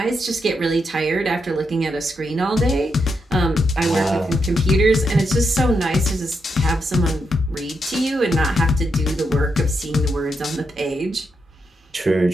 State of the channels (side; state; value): both; normal; correlation 0.82